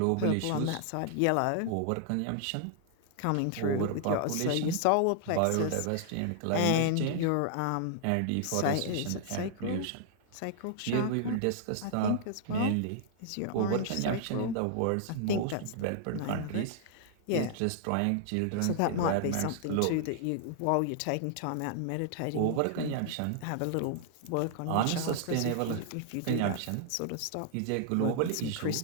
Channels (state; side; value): different; both; correlation -0.01